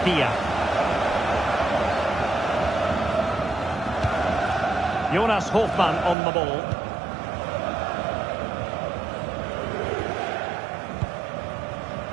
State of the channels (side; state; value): left; drops out; at 6.2 s